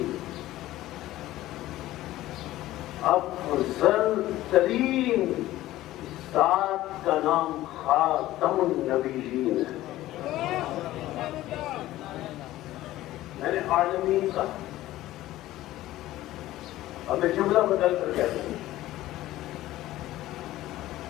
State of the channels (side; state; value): right; quieter; 15.5 dB